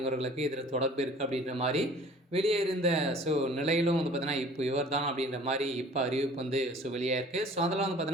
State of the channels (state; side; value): normal; both; correlation 0.49